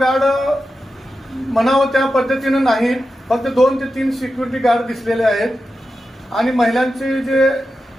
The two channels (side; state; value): both; normal; correlation 0.91